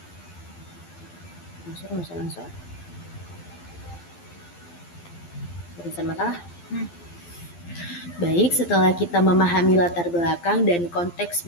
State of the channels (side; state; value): right; late; 12 ms